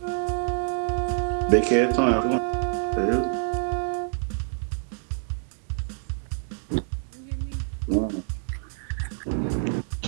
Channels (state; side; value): silent; left; 60 dB below the other